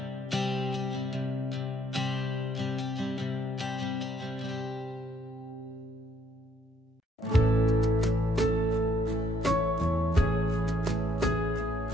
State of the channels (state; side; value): normal; both; correlation 0.67